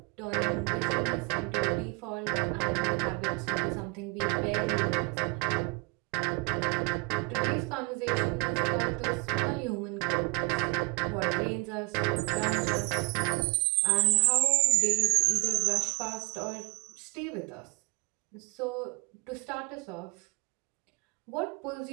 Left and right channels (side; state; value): left; quieter; 24.7 dB